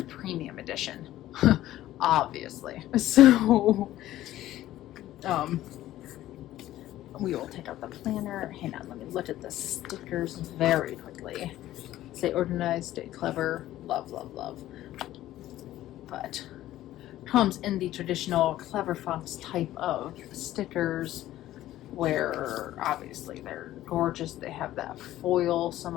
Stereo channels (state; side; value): quieter; right; 14.2 dB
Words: premium edition, obviously. So we will take out the planner. Hang on, let me look at the stickers very quickly. Stay organized, stay clever, love, love, love. But comes in the traditional Clever Fox type of stickers, where obviously they're gorgeous. They have that foil, some